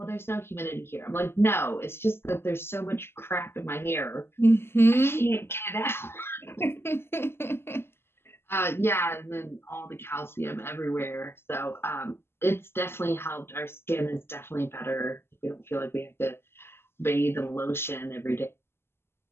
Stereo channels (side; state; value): right; late; 0.12 ms